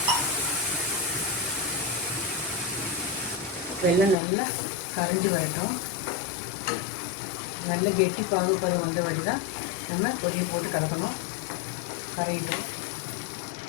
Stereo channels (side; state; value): right; drops out; at 4.2 s